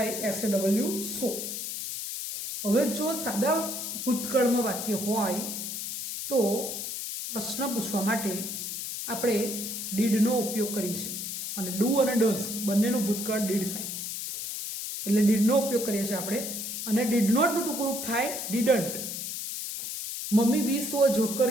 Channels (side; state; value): left; noise; hiss, 5 dB below the sound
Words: એસ એ ડબલ્યુ સો. હવે જો સાદા ભૂતકાળમાં વાક્ય હોય તો પ્રશ્ન પૂછવા માટે આપણે ડીડનો ઉપયોગ કરીએ છીએ અને ડુ અને ડઝ બંનેનું ભૂતકાળ ડીડ થાય એટલે ડીડનો ઉપયોગ કરીએ છીએ આપણે. અને ડીડ નોટનું ટૂંકું રૂપ થાય didn't. Mummy we saw joker